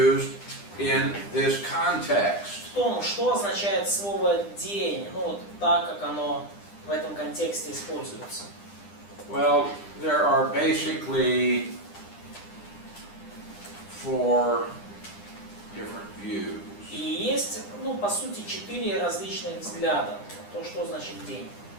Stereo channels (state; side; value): late; right; 9.9 ms